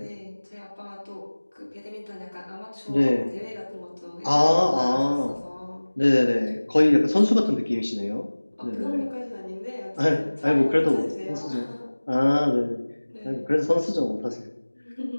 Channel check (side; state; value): both; inverted; correlation -1.00